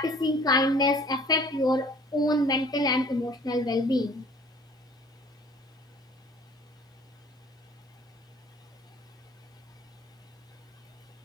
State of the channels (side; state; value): both; normal; correlation 0.52